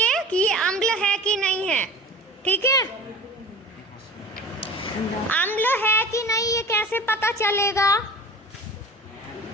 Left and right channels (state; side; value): normal; both; correlation 0.38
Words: कि ये अम्ल है कि नहीं है, ठीक है? अम्ल है कि नहीं ये कैसे पता चलेगा?